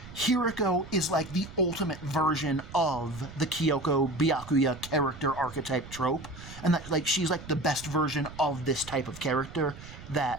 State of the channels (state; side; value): noise; right; rumble, 15 dB below the sound